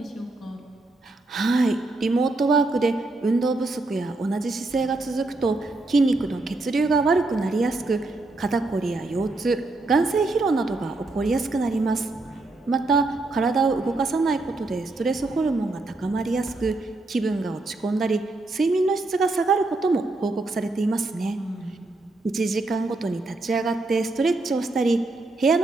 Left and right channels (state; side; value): quieter; left; 3.1 dB